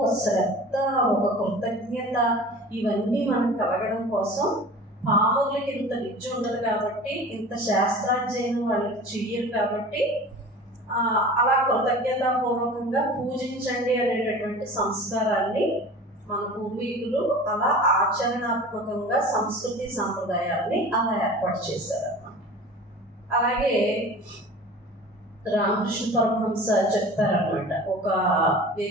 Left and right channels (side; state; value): both; normal; correlation 0.39